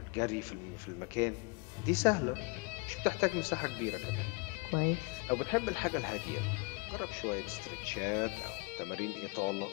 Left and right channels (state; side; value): quieter; right; 29.3 dB